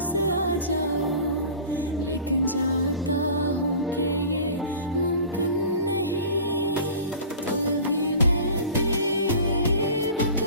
आ जाओ, लेकिन जानता हूँ कि ये मुमकिन नहीं। तो भी मैं दीप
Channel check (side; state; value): both; inverted; correlation -0.39